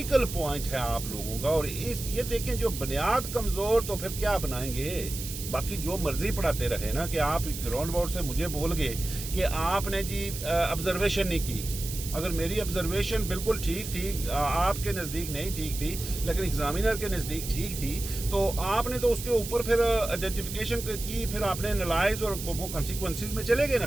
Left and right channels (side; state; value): right; noise; hiss, 8 dB below the sound